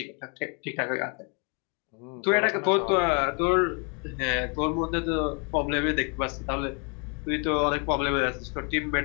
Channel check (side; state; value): right; quieter; 36.3 dB